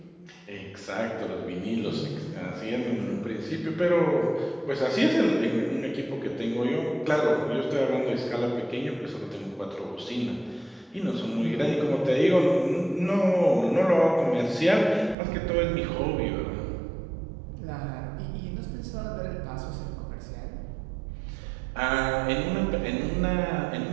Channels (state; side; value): drops out; left; at 15.2 s